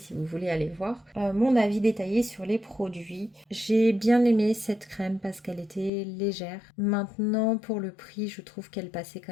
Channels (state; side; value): drops out; right; at 5.9 s